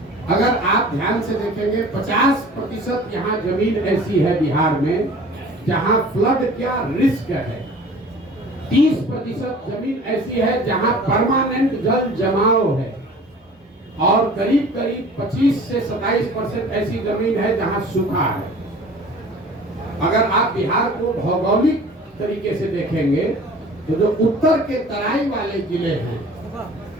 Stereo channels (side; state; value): both; normal; correlation 0.45